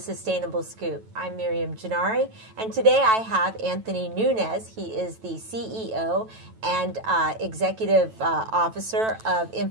Scoop. I'm Miriam Gennari, and today I have Anthony Nunez. He is the CEO and Executive Officer of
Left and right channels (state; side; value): late; left; 9.1 ms